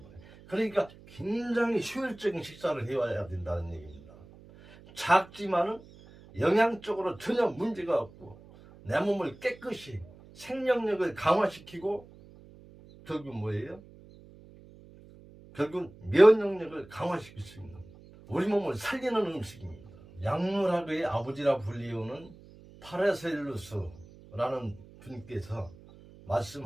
그러니까 굉장히 효율적인 식사를 해와야 된다는 얘기입니다. 작지만은 영양적으로 전혀 문제가 없고 내 몸을 깨끗이 생명력을 강화시키고 결국 뭐예요? 결국 면역력을 강화시킬 수 있는 우리 몸을 살리는 음식입니다. 약물학의 아버지라 불리우는 파라셀루스라는 분께서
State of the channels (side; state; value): right; noise; hum, 21 dB below the sound